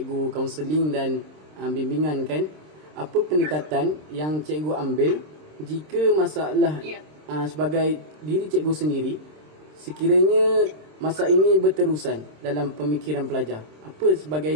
kaunseling dan bimbingan kan, apa pendekatan yang cikgu ambil jika masalah sebagai diri cikgu sendiri, sekiranya masa ini berterusan dalam pemikiran pelajar, apa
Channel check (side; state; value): left; late; 26 ms